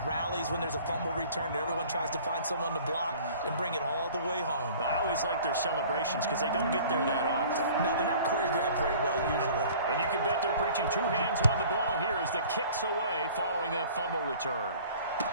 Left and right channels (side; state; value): both; inverted; correlation -0.48